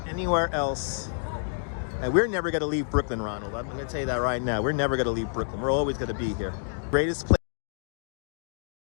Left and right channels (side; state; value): right; silent; digital silence